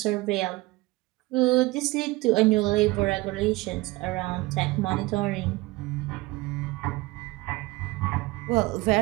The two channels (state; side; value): quieter; left; 20.9 dB